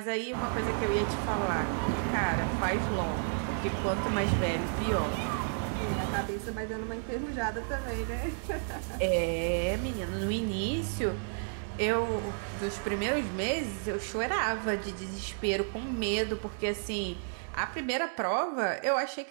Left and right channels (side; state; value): left; silent; digital silence